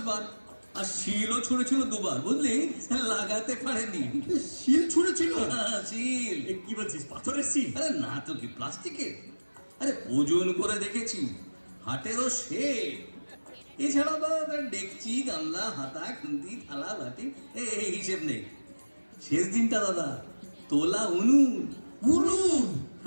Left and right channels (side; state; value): both; inverted; correlation -1.00